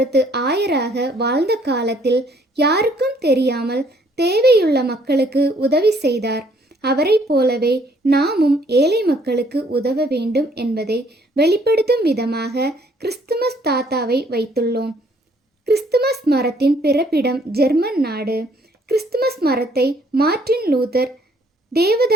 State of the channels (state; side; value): normal; both; correlation 0.63